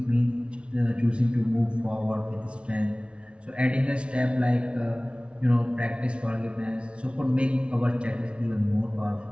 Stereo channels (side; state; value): left; late; 0.059 ms